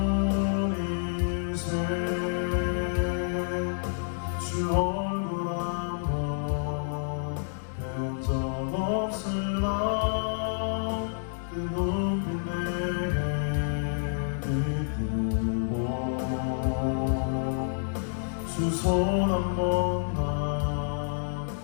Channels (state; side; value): silent; right; 59 dB below the other